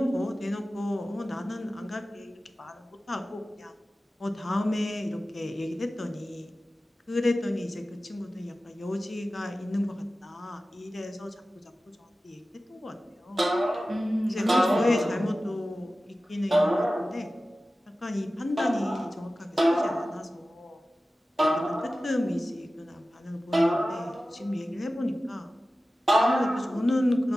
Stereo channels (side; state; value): both; normal; correlation 0.95